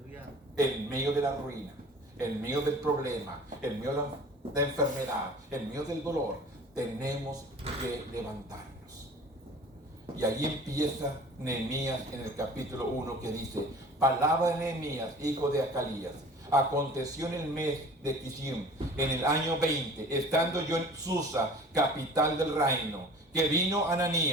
en medio de la ruina, en medio del problema, en medio de enfermedad, en medio del dolor, tenemos que levantarnos. Y allí empieza Nehemías en el capítulo 1 que dice: palabra de Nehemías, hijo de Acalías. Aconteció en el mes de Kislev, en el año 20, estando yo en Susa, capital del reino, que vino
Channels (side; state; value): both; normal; correlation 0.44